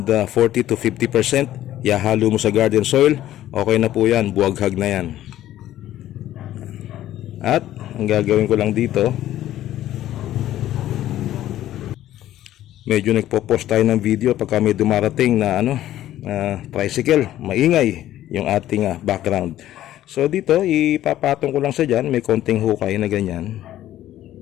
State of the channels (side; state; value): right; quieter; 13.2 dB